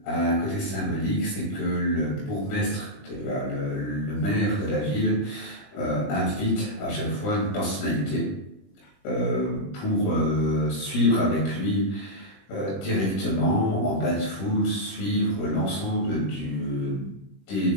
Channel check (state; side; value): late; right; 21 ms